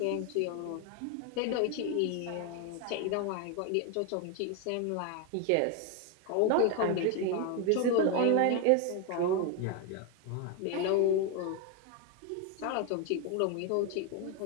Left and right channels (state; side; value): different; both; correlation 0.02